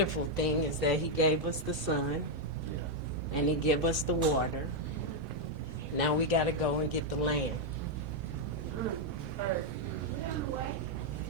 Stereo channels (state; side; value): normal; both; correlation 0.00